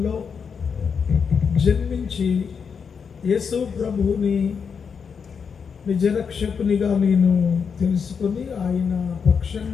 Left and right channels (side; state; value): right; quieter; 6.3 dB